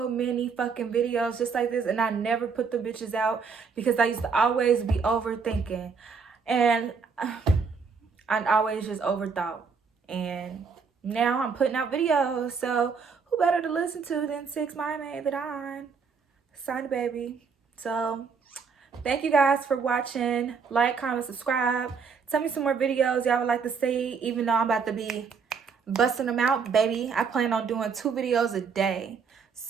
many fucking videos just like this, and I never put the bitches out because I used to always be overthinking. And I always just overthought. And now I'm putting out videos. So who better to listen to than Six My Maid that I signed baby. So thank you guys for watching. Like, comment, subscribe. Tell me some more videos y'all would like to see, even though I'm about to be busting them out, baby. I plan on doing 2 videos a day.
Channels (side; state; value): left; quieter; 5.6 dB